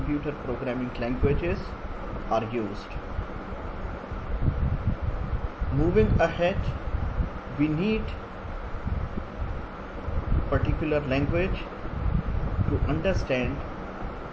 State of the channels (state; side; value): identical; both; correlation 1.00